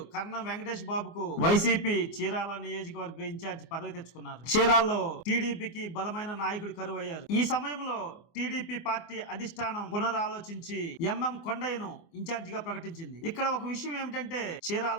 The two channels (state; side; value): late; right; 24 ms